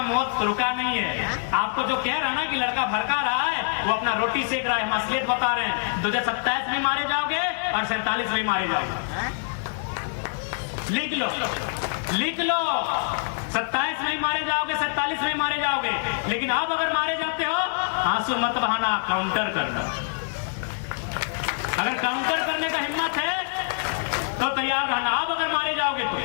मौत रुका नहीं है। आपको जो कह रहा है ना कि लड़का भड़का रहा है, वो अपना रोटी सेक रहा है, हम असलियत बता रहे हैं। 2027 में मारे जाओगे और 47 में मारे जाओगे। लिख लो, लिख लो, 27 में मारे जाओगे, 47 में मारे जाओगे। लेकिन अब अगर मारे जाते हो, आंसू मत बहाना, काउंटर करना। अगर काउंटर करने का हिम्मत है तो तैयार रहना। अब अगर मारे जाओगे तो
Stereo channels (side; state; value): right; silent; digital silence